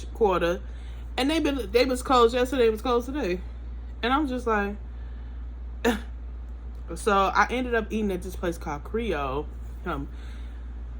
Quarter, and they was closed yesterday. It was closed today, and I'm just like. So I ended up eating at this place called Creole.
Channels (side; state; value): both; identical; correlation 1.00